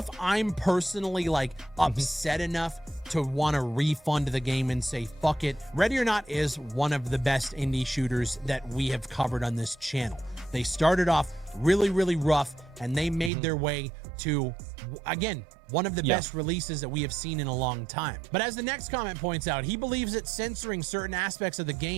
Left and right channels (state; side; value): drops out; left; at 13.3 s